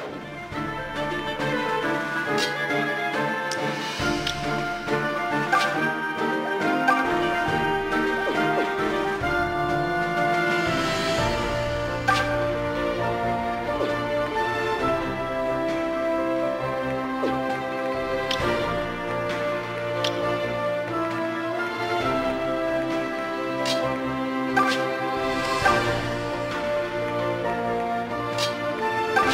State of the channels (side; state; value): both; identical; correlation 1.00